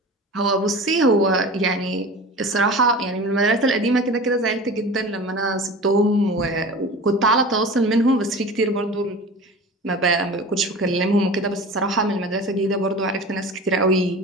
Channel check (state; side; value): normal; both; correlation 0.35